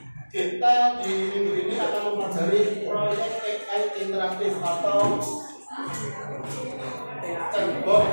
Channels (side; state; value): both; inverted; correlation -1.00